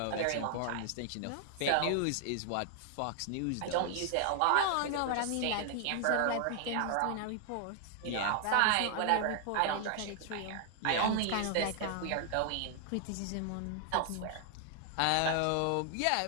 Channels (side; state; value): both; different; correlation 0.00